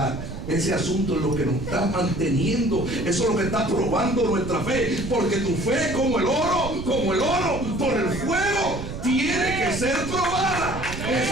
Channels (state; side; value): noise; right; rumble, 8 dB below the sound